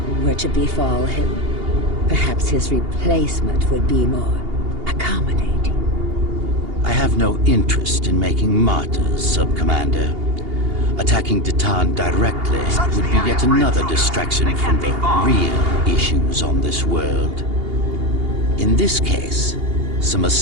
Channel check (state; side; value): late; left; 2.8 ms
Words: were to befall him, perhaps his replacement would be more accommodating. I have no interest in making martyrs, Sub-Commander. Attacking Deton directly would be yet another distraction from the real issues on this world. In this case, some